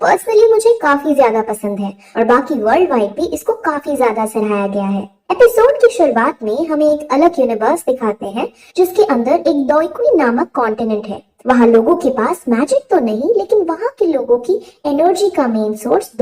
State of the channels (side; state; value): both; identical; correlation 1.00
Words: पर्सनली मुझे काफी ज्यादा पसंद है और बाकी वर्ल्ड वाइड भी इसको काफी ज्यादा सराहाया गया है। एपिसोड की शुरुआत में हमें एक अलग यूनिवर्स दिखाते हैं जिसके अंदर एक दोइकुई नामक कॉन्टिनेंट है। वहाँ लोगों के पास मैजिक तो नहीं, लेकिन वहाँ के लोगों की एनर्जी का मेन सोर्स